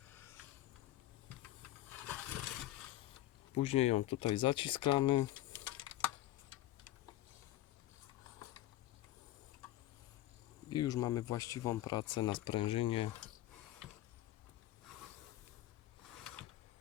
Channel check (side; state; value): right; quieter; 14.7 dB